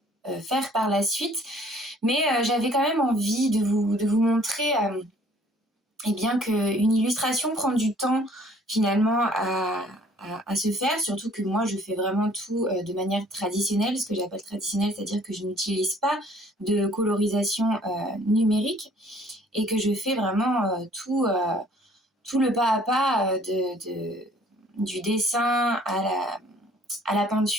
faire par la suite. Mais j'avais quand même envie de vous montrer eh bien qu'une illustration prend du temps finalement à se faire, surtout que moi je fais vraiment tout de manière traditionnelle, ce que j'appelle traditionnelle, c'est-à-dire que je n'utilise pas de colorisation numérique et que je fais vraiment tout le pas à pas du dessin à la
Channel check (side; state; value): both; normal; correlation 0.57